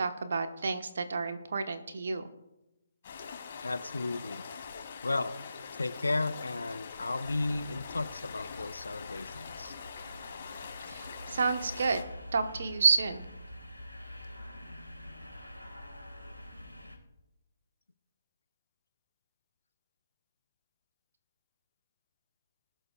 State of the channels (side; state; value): both; inverted; correlation -0.87